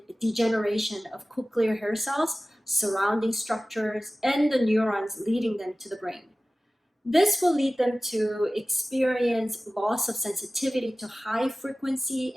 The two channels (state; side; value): normal; both; correlation 0.97